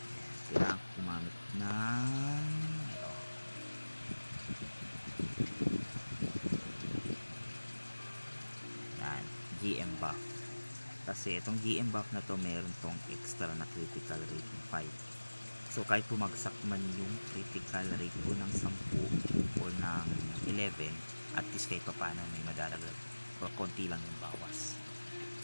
kailangan ko gumamit ng ito. Yan, GM buff. Kasi itong GM buff na to, meron tong extra na critical rate ng 5. So kahit bumagsak man yung critical rate ko ng 10 o ng 11, at least kahit paano may madalagdag o konti lang yung bawas.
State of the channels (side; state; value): both; inverted; correlation -1.00